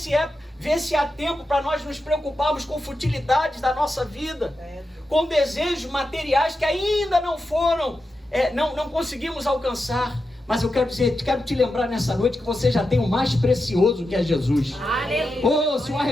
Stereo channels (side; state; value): both; normal; correlation 0.89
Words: há tempo para nós nos preocuparmos com futilidades da nossa vida, com desejos materiais que ainda não foram, não conseguimos alcançar. Mas eu quero te lembrar nessa noite que você já tem o mais precioso, que é Jesus. Oh, se o